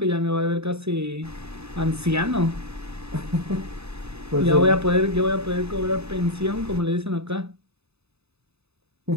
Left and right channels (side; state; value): left; late; 0.79 ms